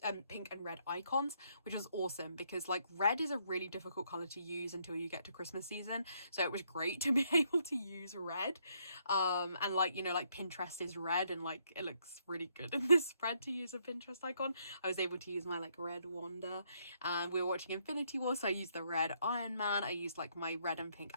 pink and red icons, which was awesome, because like red is a really difficult color to use until you get to Christmas season. So it was great to be able to use red. And like, you know, like Pinterest is red, and like it looks really good in this spread to use a Pinterest icon. I was able to use my like red Wanda. And we were watching Infinity War, so I used the red Iron Man. I used like my red and pink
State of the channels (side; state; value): both; inverted; correlation -0.72